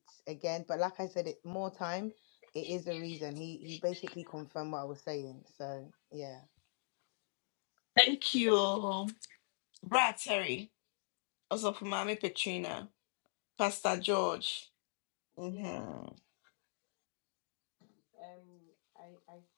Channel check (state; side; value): silent; right; digital silence